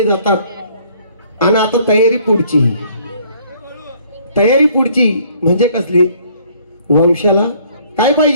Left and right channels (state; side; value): inverted; both; correlation -0.60